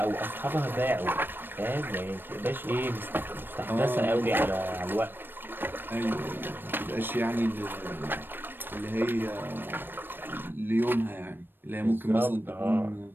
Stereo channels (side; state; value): left; late; 0.096 ms